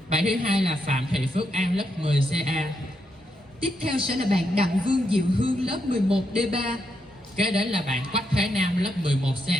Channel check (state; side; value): normal; both; correlation 0.81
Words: Bạn thứ hai là Phạm Thị Phước An, lớp 10 CA. Tiếp theo sẽ là bạn Đặng Vương Diệu Hương, lớp 11 D3. Kế đến là bạn Quách Thế Nam, lớp 11